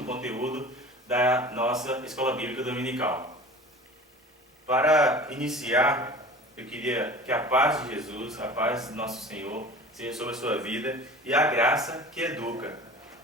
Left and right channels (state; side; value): normal; both; correlation 0.39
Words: conteúdo da nossa Escola Bíblica Dominical. Para iniciar, eu queria que a paz de Jesus, a paz do nosso Senhor, seja sobre a sua vida e a graça que educa.